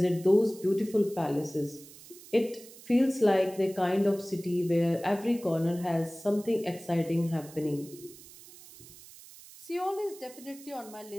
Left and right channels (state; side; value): noise; right; hiss, 19 dB below the sound